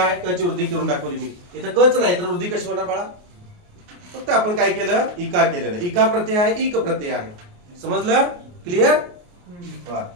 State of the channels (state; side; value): late; left; 28 ms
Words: क ची वृद्धी करून दाखवली मी. इथं कच नाही तर वृद्धी कशी होणार बाळा? फक्त आपण काय केलं? इका केलेलं. इका प्रत्यय आहे, इक प्रत्यय आहे. समजलं? क्लिअर?